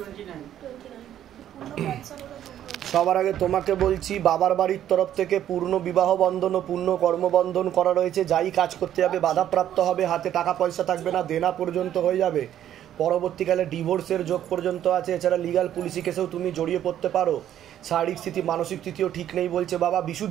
সবার আগে তোমাকে বলছি, বাবার বাড়ির তরফ থেকে পূর্ণ বিবাহ বন্ধন ও পূর্ণ কর্মবন্ধন করা রয়েছে। যাই কাজ করতে যাবে বাধাপ্রাপ্ত হবে, হাতে টাকা পয়সা থাকবে না, দেনা পর্যন্ত হয়ে যাবে। পরবর্তীকালে ডিভোর্সের যোগ পর্যন্ত আছে। এছাড়া লিগাল পুলিশি কেসেও তুমি জড়িয়ে পড়তে পারো। শারীরিক স্থিতি, মানসিক স্থিতিও ঠিক নেই বলছে বাবা।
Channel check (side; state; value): left; quieter; 11.1 dB